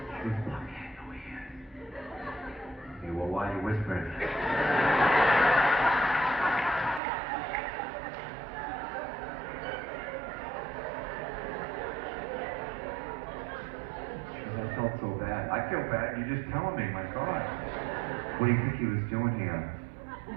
goes, fuck, he had no ears. Okay, well, why are you whispering? She goes, I felt so bad. I feel bad, you're just telling me, my God. What do you think he was doing here?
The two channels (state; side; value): drops out; left; at 7.0 s